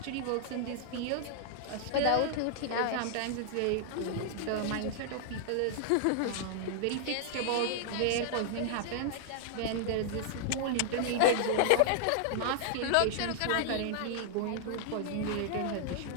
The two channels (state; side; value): different; both; correlation -0.01